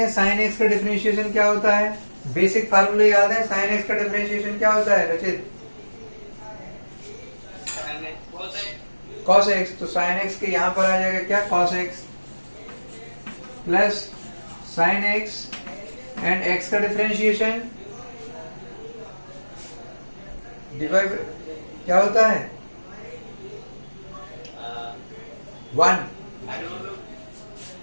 साइन एक्स का डिफरेंशिएशन क्या होता है, बेसिक फार्मूला याद है, साइन एक्स का डिफरेंशिएशन क्या होता है रचित? Cos x. तो साइन एक्स के यहां पर आ जाएगा क्या, cos x plus sine x and x का डिफरेंशिएशन डिवाइड क्या होता है 1।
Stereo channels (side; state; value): both; inverted; correlation -1.00